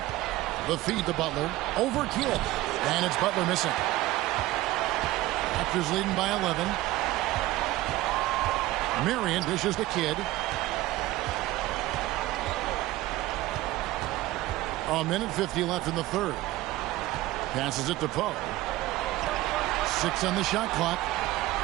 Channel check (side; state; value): left; quieter; 17.1 dB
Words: The feed to Butler. Over Kidd. And it's Butler missing. Raptors leading by 11. Marion dishes the Kidd. A minute 50 left in the third. Passes it to Poe. 6 on the shot clock.